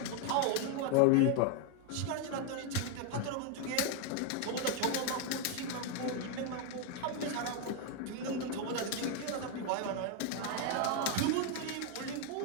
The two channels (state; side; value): different; both; correlation 0.01